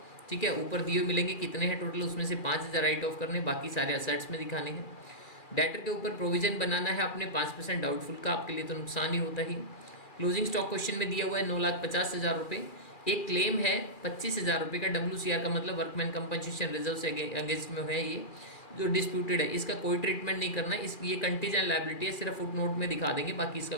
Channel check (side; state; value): right; late; 2.4 ms